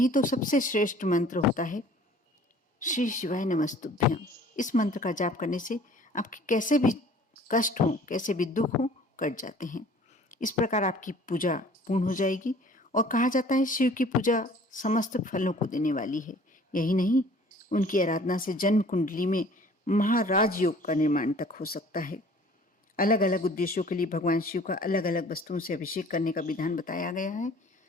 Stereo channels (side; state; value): both; normal; correlation 0.51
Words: तो सबसे श्रेष्ठ मंत्र होता है श्री शिवाय नमस्तुभ्यम। इस मंत्र का जाप करने से आपके कैसे भी कष्ट हो, कैसे भी दुख हो, कट जाते हैं। इस प्रकार आपकी पूजा पूर्ण हो जाएगी। और कहा जाता है शिव की पूजा समस्त फलों को देने वाली है। यही नहीं, उनकी आराधना से जन्म कुंडली में महाराज योग का निर्माण तक हो सकता है। अलग अलग उद्देश्यों के लिए भगवान शिव का अलग अलग वस्तुओं से अभिषेक करने का विधान बताया गया है।